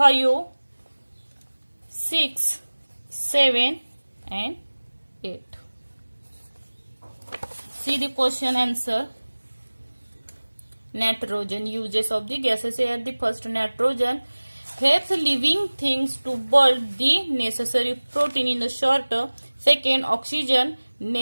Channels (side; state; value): both; inverted; correlation -1.00